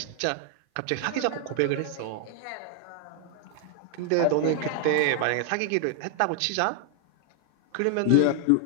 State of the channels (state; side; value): different; both; correlation 0.00